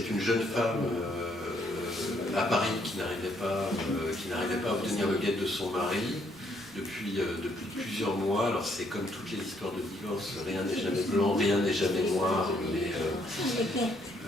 une jeune femme à Paris qui n'arrivait pas à obtenir le guet de son mari depuis plusieurs mois. Alors c'est comme toutes les histoires de divorce, rien n'est jamais blanc, rien n'est jamais noir, mais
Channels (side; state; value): both; normal; correlation 0.70